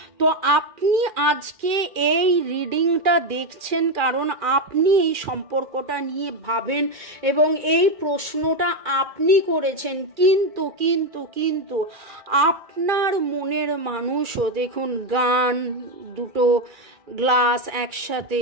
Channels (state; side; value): late; left; 2.4 ms